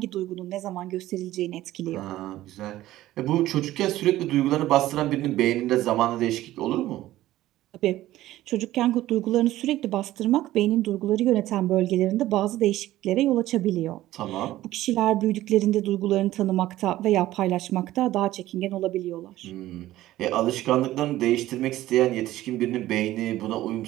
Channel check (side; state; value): left; quieter; 15.2 dB